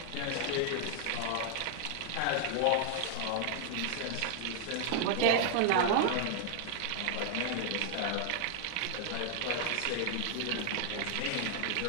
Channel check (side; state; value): both; different; correlation 0.00